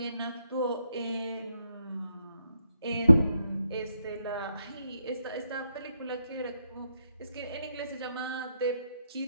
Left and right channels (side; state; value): both; inverted; correlation -0.79